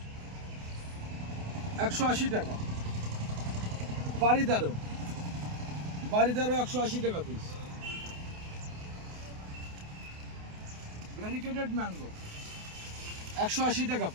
180 টাকা। বাড়িদারও 180 টাকা পিস। ভ্যারিকেটেড ম্যাঙ্গো 180 টাকা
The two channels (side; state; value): left; late; 28 ms